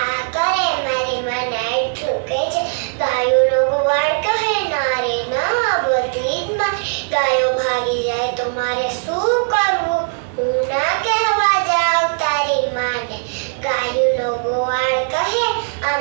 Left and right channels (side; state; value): left; silent; digital silence